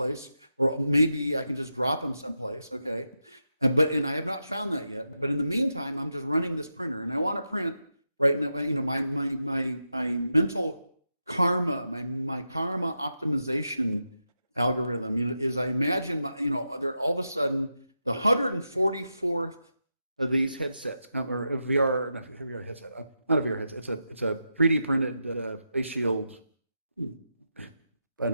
or maybe I can just drop them someplace, okay? And I have not found that yet. But in the meantime, I'm just running this printer, and I want to print. Right now, my mental karma, my karma optimization algorithm, is I imagine, there all of a sudden the 144th of these headsets, or a VR, not a VR headset, not a VR headset. It's a 3D printed face shield, I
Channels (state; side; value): inverted; both; correlation -0.88